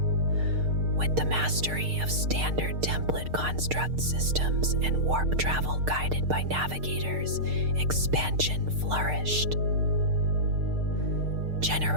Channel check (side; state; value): left; late; 6.6 ms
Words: With the mastery of standard template construct systems and warp travel guided by navigators, expansion flourished.